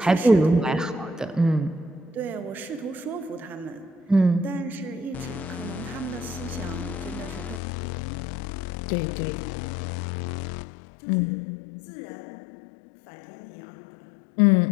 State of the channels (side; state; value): right; drops out; at 7.6 s